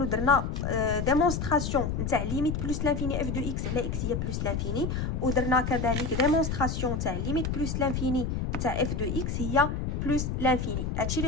درنا ديمونستراسيون نتاع ليميت بلس لانفيني اف دو اكس على اكس هي بلس لانفيني، ودرنا كذلك ديمونستراسيون تاع ليميت بلس لانفيني نتاع اف دو اكس هي بلس لانفيني. هادشي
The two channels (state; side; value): noise; left; rumble, 2 dB below the sound